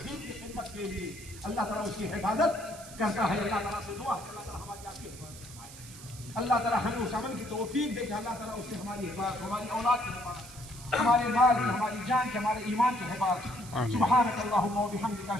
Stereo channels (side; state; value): right; noise; hiss, 16 dB below the sound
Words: دین کی خدمت کے لیے، اللہ تعالیٰ اس کی حفاظت کرتا ہے۔ اللہ تعالیٰ سے دعا ہے اللہ تعالیٰ ہماری آپ کی حفاظت فرمائے، اللہ تعالیٰ ہمیں اس عمل کی توفیق دے کہ اللہ تعالیٰ اس سے ہماری حفاظت، ہماری اولاد کی حفاظت، ہمارے مال کی، ہماری جان کی، ہمارے ایمان کی حفاظت۔ سبحانک اللہم و بحمدک،